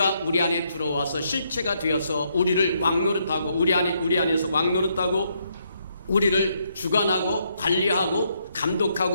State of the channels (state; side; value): inverted; both; correlation -0.75